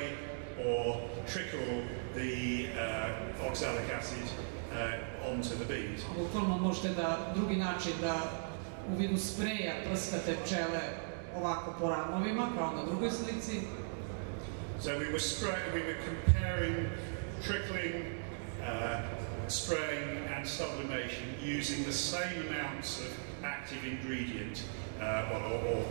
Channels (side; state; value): left; silent; digital silence